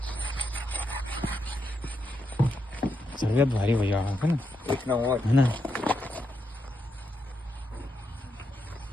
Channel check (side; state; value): both; normal; correlation 0.82